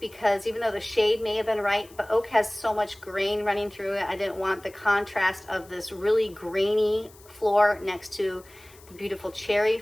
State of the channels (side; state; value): left; noise; hiss, 25 dB below the sound